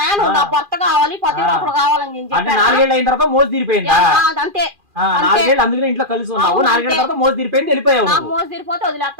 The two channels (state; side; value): late; left; 2.4 ms